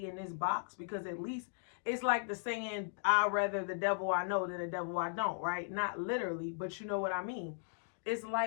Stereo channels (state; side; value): silent; right; digital silence